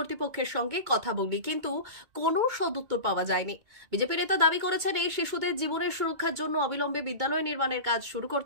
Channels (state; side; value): late; left; 2.2 ms